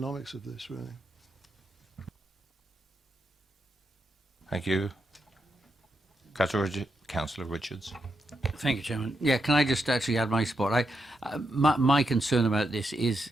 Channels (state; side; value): normal; both; correlation 0.83